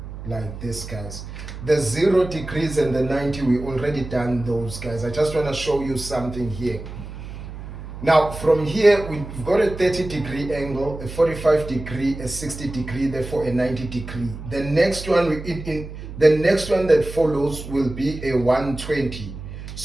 Like this, guys. The 0 degrees and the 90, we already done those, guys. I just want to show you something here. Now, from here, we've got a 30-degree angle, a 45-degree, a 60-degree, therefore a 90-degree. The next one, the next one that follows will be a 120.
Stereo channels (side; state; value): right; noise; hum, 11 dB below the sound